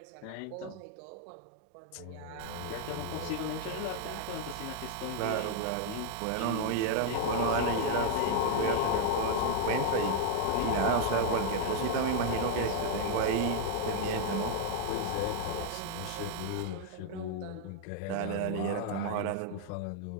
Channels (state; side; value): different; both; correlation 0.00